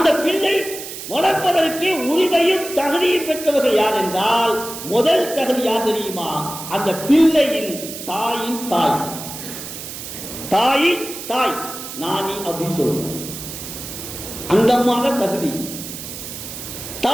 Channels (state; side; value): noise; right; hiss, 10 dB below the sound